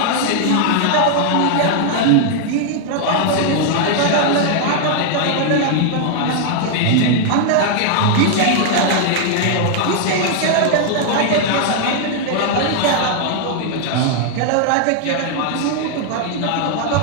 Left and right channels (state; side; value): different; both; correlation 0.00